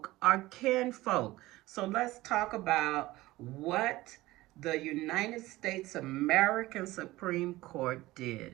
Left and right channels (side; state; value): left; quieter; 18.2 dB